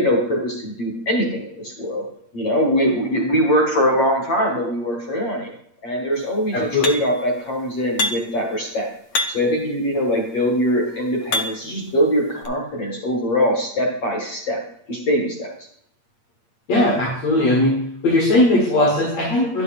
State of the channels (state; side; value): late; right; 8.6 ms